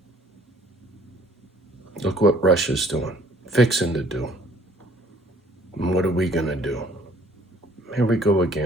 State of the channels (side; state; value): both; normal; correlation 0.59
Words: Look what Russia's doing, fixing to do. And what are we gonna do? Here we go